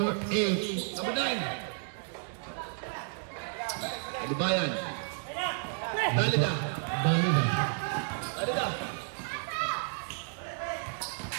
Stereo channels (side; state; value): left; silent; 57 dB below the other